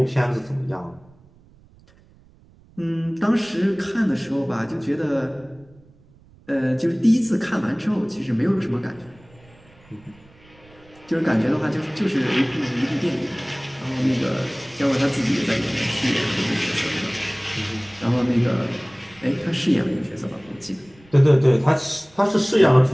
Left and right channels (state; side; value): noise; right; rumble, 27 dB below the sound